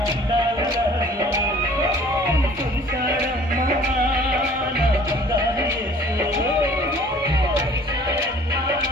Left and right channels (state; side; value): normal; both; correlation 0.52